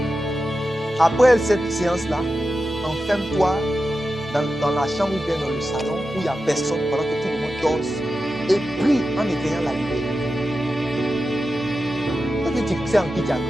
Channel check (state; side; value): normal; both; correlation 0.91